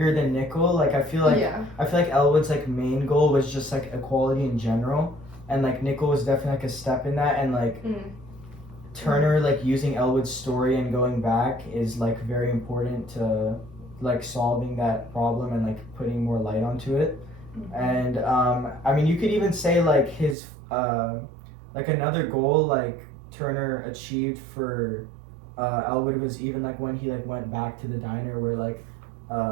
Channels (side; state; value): left; drops out; at 20.4 s